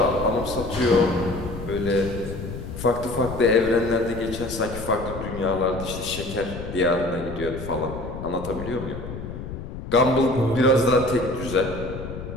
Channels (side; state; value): left; noise; rumble, 9 dB below the sound